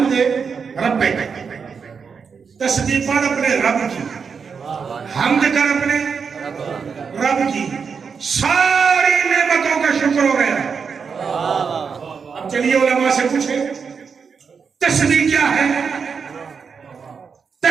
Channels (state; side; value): quieter; left; 5.9 dB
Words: ربک تسبیح پر اپنے رب کی حمد کر اپنے رب کی ساری نعمتوں کا شکر ہو گیا اب چلیے علماء سے پوچھیں تسبیح کیا ہے